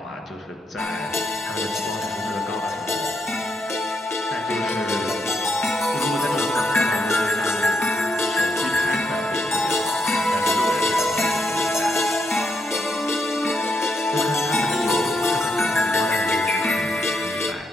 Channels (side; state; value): both; normal; correlation 0.79